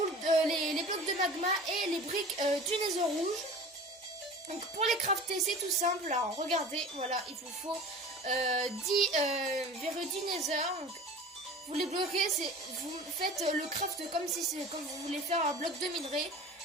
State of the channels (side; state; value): both; normal; correlation 0.39